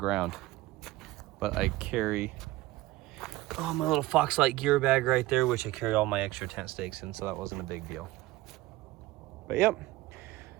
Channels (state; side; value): quieter; left; 17.6 dB